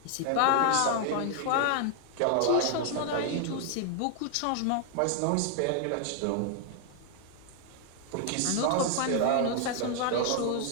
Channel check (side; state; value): both; different; correlation 0.00